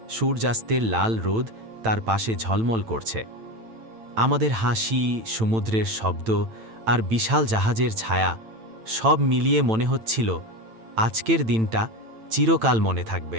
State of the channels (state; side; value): late; left; 9.0 ms